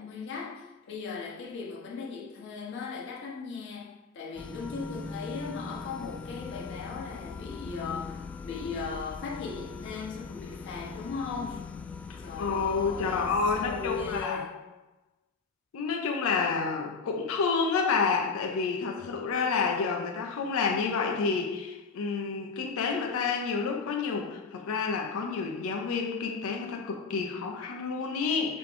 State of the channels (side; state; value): right; quieter; 4.7 dB